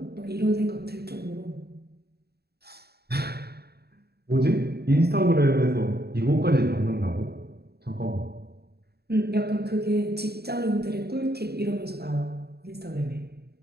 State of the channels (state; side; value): late; left; 0.47 ms